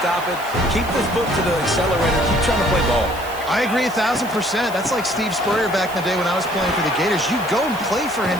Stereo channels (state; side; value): noise; right; hiss, 17 dB below the sound